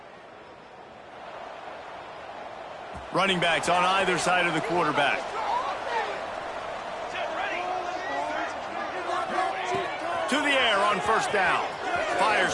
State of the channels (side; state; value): both; identical; correlation 1.00